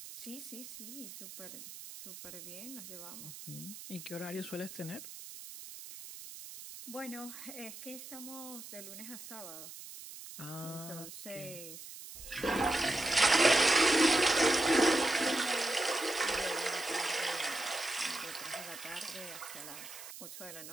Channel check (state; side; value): noise; right; hiss, 13 dB below the sound